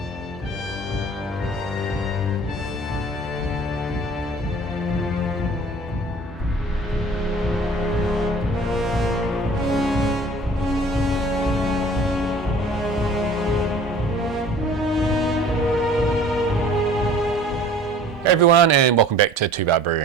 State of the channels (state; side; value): normal; both; correlation 0.48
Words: Hey everyone, and welcome back to Two